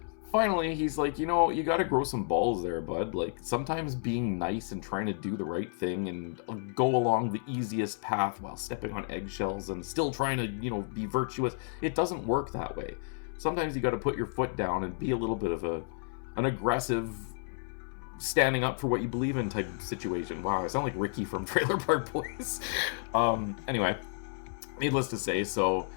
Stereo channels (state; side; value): silent; right; 57 dB below the other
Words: finally, he's like, you know, you gotta grow some balls there, bud. Like, sometimes being nice and trying to do the right thing and go along the easiest path while stepping on eggshells and still trying to, you know, be virtuous, it doesn't work that way. Sometimes you gotta put your foot down and be a little bit of an aggressive, standing up for what you believe in type of situation. Wow, I sound like Ricky from Trailer Park Boys. Anyway, needless to say, so